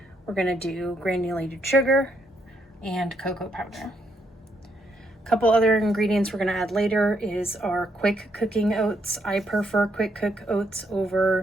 We're going to do granulated sugar and cocoa powder. A couple other ingredients we're going to add later is our quick cooking oats. I prefer quick cook oats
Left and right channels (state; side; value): normal; both; correlation 0.75